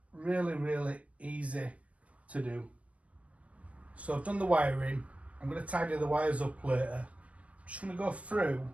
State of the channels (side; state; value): left; late; 0.065 ms